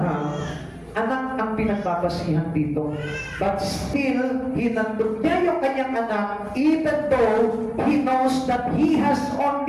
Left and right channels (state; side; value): identical; both; correlation 1.00